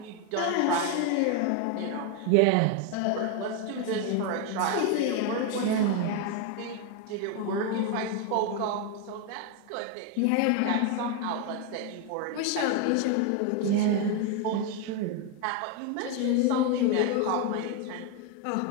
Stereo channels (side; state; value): both; different; correlation 0.01